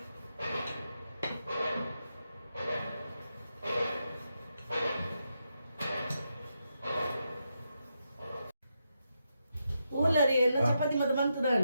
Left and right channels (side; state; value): both; inverted; correlation -0.85